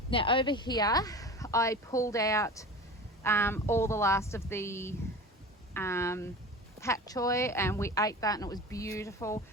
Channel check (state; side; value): normal; both; correlation 0.34